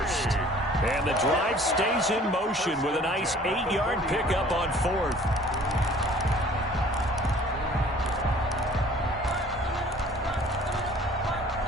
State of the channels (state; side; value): normal; both; correlation 0.51